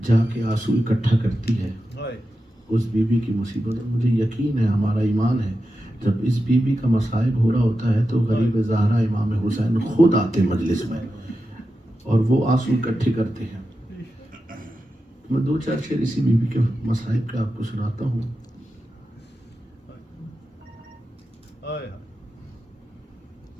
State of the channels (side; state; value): both; normal; correlation 0.91